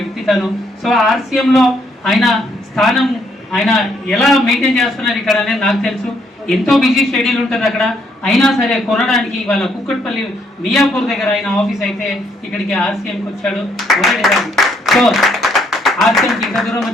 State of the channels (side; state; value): both; normal; correlation 0.71